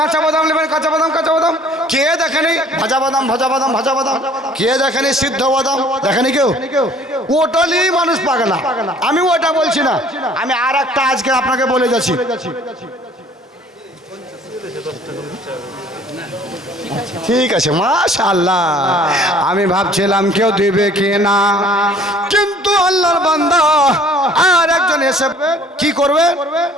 বাদাম নেবেন, কাঁচা বাদাম, কাঁচা বাদাম। কে দেখেনি ভাজা বাদাম, ভাজা বাদাম, ভাজা বাদাম? কে দেখেনি সিদ্ধ বাদাম? দেখেনি কেউ? ওটালি মানুষ পাগলা। আমি ওটা বলছি না, আমি আর একটা আজকে আপনাকে বলে যাচ্ছি। ঠিক আছে, মাশাআল্লাহ। আমি ভাবছিলাম কেউ দিবে কি না, কিন্তু আল্লাহর বান্দা আর একজন এসে কি করবে?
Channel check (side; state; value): both; normal; correlation 0.54